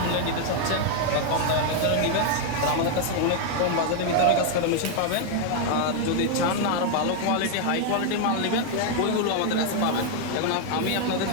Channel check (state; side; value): different; both; correlation 0.00